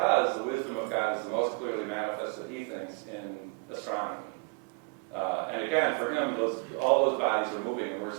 the wisdom of God is the most clearly manifested, he thinks, in astronomy. And again, for him, all those bodies are moving and we're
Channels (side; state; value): left; quieter; 32.0 dB